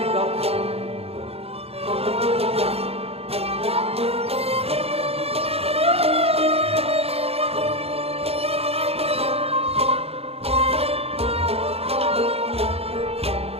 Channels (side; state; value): left; late; 0.29 ms